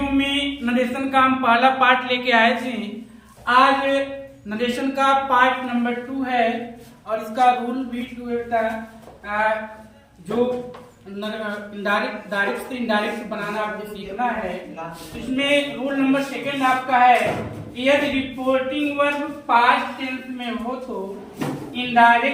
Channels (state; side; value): identical; both; correlation 1.00